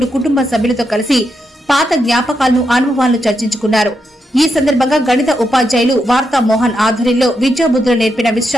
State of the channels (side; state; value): both; normal; correlation 0.83